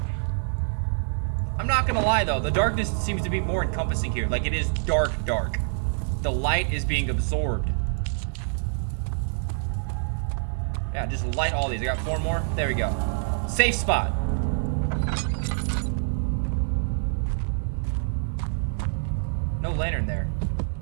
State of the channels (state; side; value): silent; left; digital silence